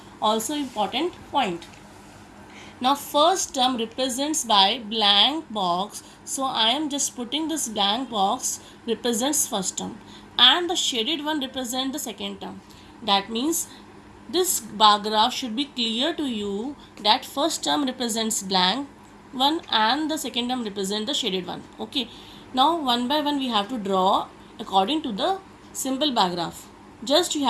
also important point. Now first term represents by blank box, so I am just putting this blank box represents first term, and the shaded one represents the second term. That means this bar graph should be clear to you that first term represents blank one and the second term represents the shaded one. Okay, now one by one we have to draw according to the simple bar graph. Just you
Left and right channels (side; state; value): both; identical; correlation 1.00